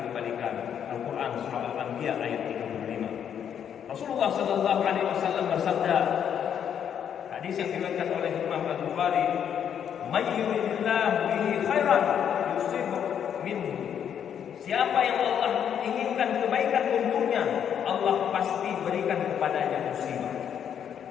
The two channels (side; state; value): right; quieter; 8.7 dB